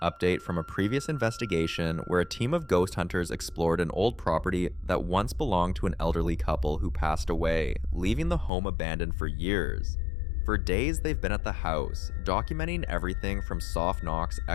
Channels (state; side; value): drops out; right; at 8.5 s